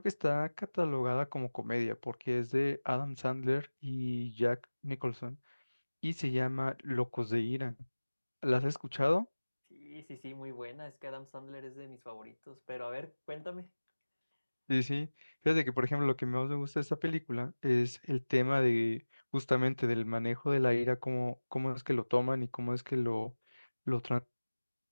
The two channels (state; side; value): inverted; both; correlation -1.00